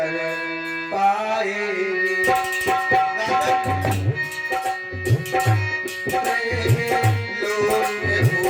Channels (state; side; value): identical; both; correlation 1.00